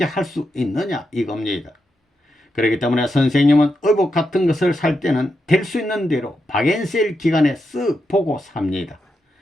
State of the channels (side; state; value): both; normal; correlation 0.85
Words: 할 수 있느냐 이겁니다. 그렇기 때문에 선생님은 의복 같은 것을 살 때는 될 수 있는 대로 박앤세일 기간에 쓱 보고 삽니다.